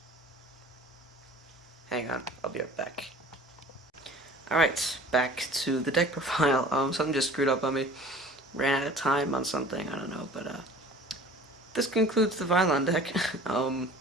Hang on, I'll be right back. Alright, back to the deck profile. Something just screwed up on me. Ran out of time on something, I don't know, but this concludes the Vylon deck.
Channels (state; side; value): normal; both; correlation 0.46